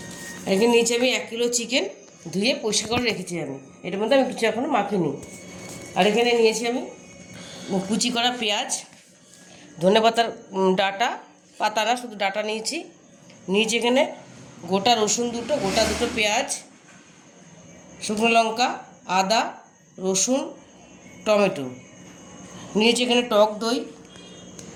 এখানে নিয়েছি আমি 1 কিলো চিকেন, ধুয়ে পরিষ্কার করে রেখেছি আমি। এটার মধ্যে আমি কিছু এখনো মাখিনি। আর এখানে নিয়েছি আমি কুচি করা পেঁয়াজ, ধনেপাতার ডাটা, পাতা না, শুধু ডাটা নিয়েছি। এখানে গোটা রসুন গোটা দুটো পেঁয়াজ, শুকনো লঙ্কা, আদা, রসুন, টমেটো নিয়েছি। এখানে টক দই,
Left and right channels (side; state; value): both; identical; correlation 1.00